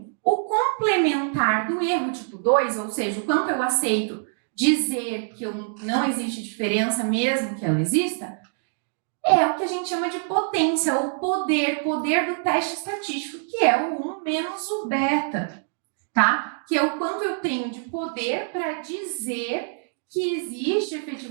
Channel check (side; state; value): left; silent; digital silence